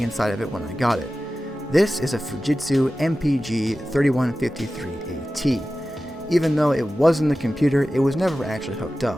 inside of it when I got it. This is a Fujitsu MPG 3153AT. Even though it was in the computer, it was never actually hooked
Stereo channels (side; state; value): both; normal; correlation 0.95